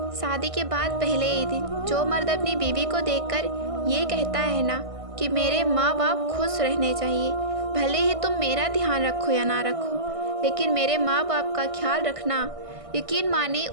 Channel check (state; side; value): late; left; 1.6 ms